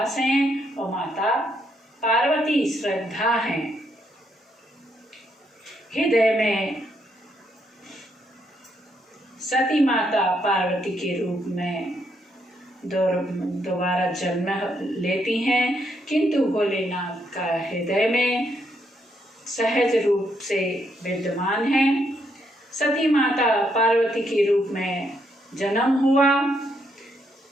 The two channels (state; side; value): normal; both; correlation 0.75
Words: हैं और माता पार्वती श्रद्धा हैं। हृदय में सती माता पार्वती के रूप में दोबारा जन्म लेती हैं, किंतु भोलेनाथ का हृदय में सहज रूप से विद्यमान है। सती माता पार्वती के रूप में जन्म हुआ,